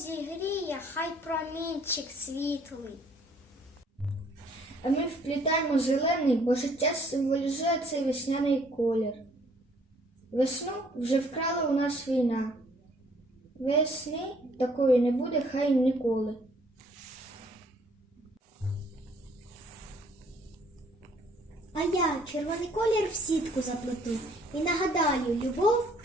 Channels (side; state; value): both; normal; correlation 0.61